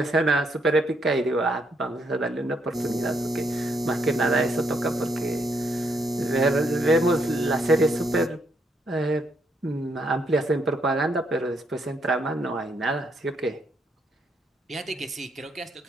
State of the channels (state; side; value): normal; both; correlation 0.74